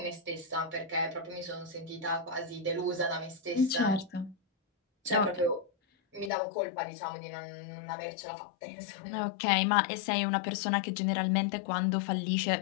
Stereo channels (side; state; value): right; drops out; at 6.3 s